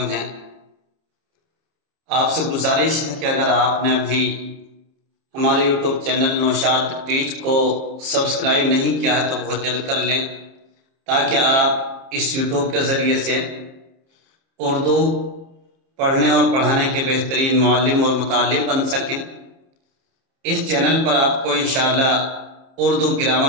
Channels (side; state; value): left; late; 30 ms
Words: ہے۔ آپ سے گزارش ہے کہ اگر آپ نے ابھی ہمارے یوٹیوب چینل نوشاد ٹیچ کو سبسکرائب نہیں کیا ہے تو بہت جلد کر لیں، تاکہ آپ اس یوٹیوب کے ذریعے سے اردو پڑھنے اور پڑھانے کے بہترین معلم اور متعلم بن سکیں۔ اس چینل پر آپ کو انشاءاللہ اردو